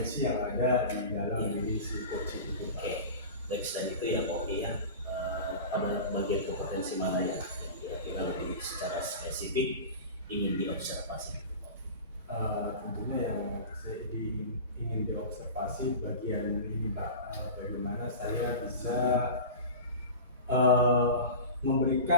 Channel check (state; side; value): inverted; both; correlation -0.32